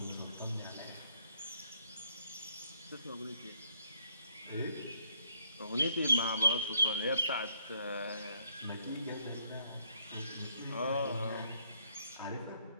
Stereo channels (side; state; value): both; inverted; correlation -0.69